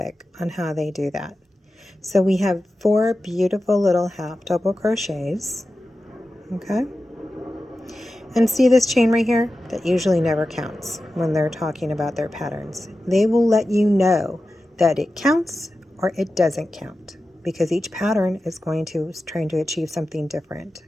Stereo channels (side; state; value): both; normal; correlation 0.93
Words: on how they do that. So we have 4 beautiful little half double crochets. Okay? And see this chain right here? That usually never counts when they're talking about their patterns. They will let you know that it counts or it doesn't count because each pattern is trying to achieve something different.